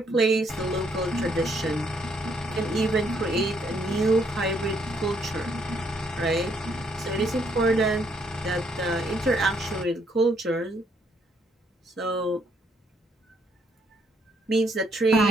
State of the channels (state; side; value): normal; both; correlation 0.71